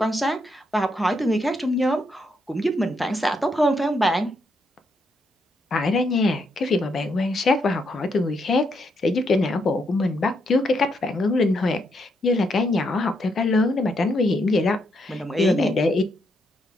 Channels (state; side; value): normal; both; correlation 0.78